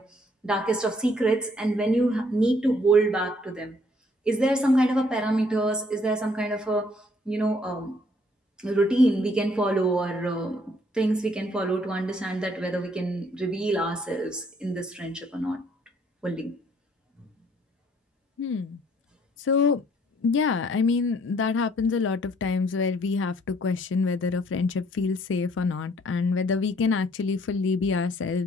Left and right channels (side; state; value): both; normal; correlation 0.63